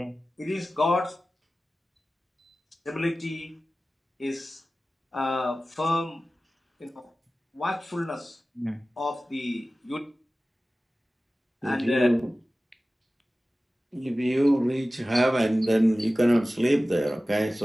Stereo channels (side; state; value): both; normal; correlation 0.96